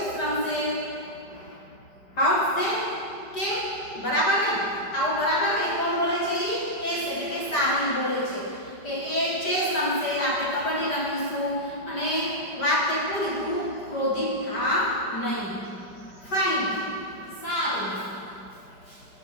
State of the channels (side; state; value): right; late; 5.0 ms